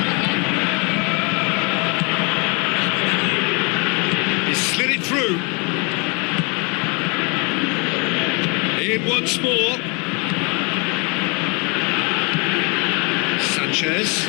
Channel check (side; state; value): right; quieter; 31.7 dB